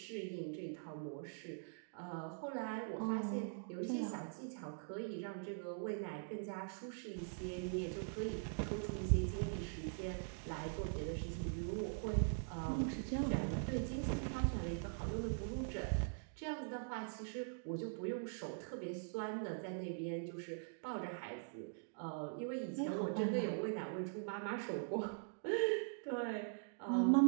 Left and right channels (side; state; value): left; silent; digital silence